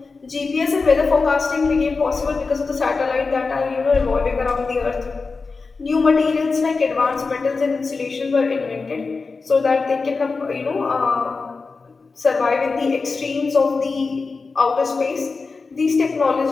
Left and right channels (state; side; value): quieter; right; 4.3 dB